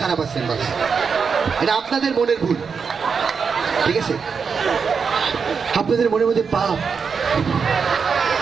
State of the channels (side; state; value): left; quieter; 5.8 dB